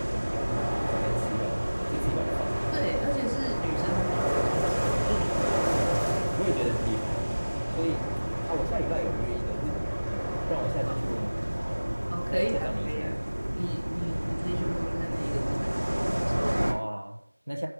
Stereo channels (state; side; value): inverted; both; correlation -1.00